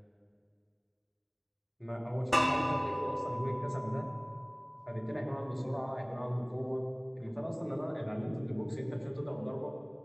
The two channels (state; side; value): identical; both; correlation 1.00